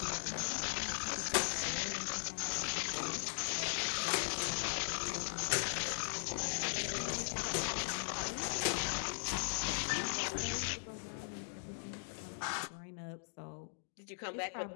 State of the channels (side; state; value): right; silent; digital silence